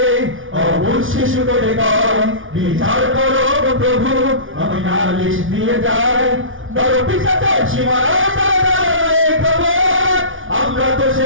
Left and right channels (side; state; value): left; late; 0.57 ms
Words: অবুঝ শিশু করে কয় বিচার করো প্রভু আমি নালিশ দিয়ে যাই বড় পিছাচার সীমানায় দাঁড়ায় খবর আমরা তো